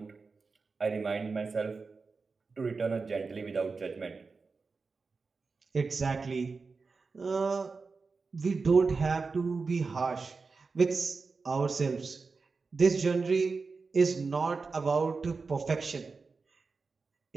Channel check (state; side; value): quieter; left; 4.4 dB